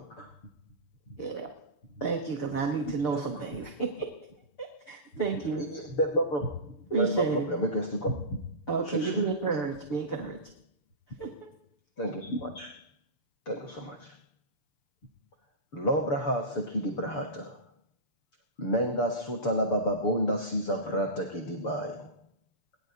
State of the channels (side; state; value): right; late; 6.8 ms